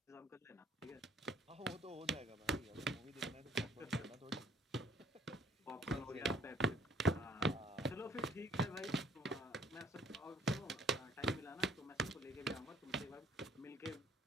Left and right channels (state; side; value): normal; both; correlation 0.60